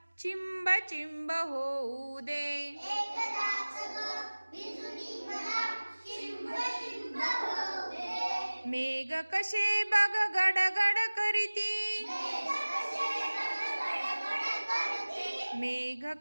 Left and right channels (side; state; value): both; inverted; correlation -1.00